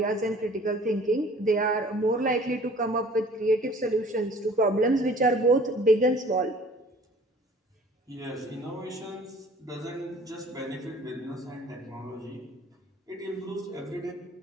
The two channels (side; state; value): both; normal; correlation 0.50